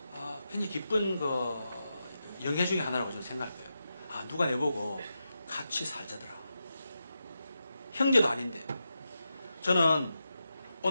굉장히 기쁜 영예 중에 하나라고 저는 생각할 거예요. 누가 내보고 같이 살자더라. 형제도 아닌데. 저는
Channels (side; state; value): both; inverted; correlation -0.88